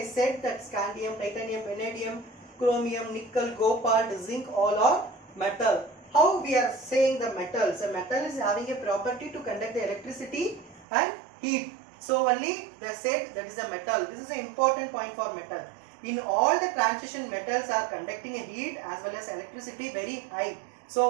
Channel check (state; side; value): drops out; left; at 10.9 s